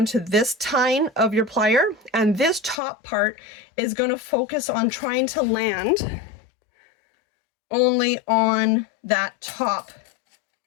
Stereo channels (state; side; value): drops out; right; at 2.8 s